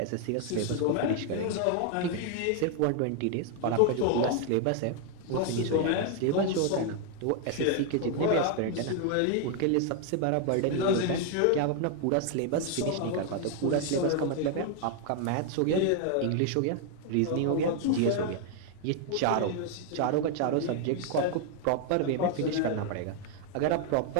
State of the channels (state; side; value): different; both; correlation 0.00